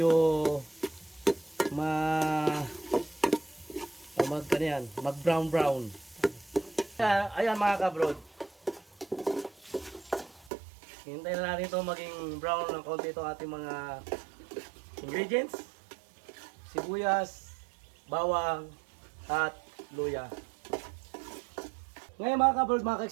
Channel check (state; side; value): drops out; left; at 10.5 s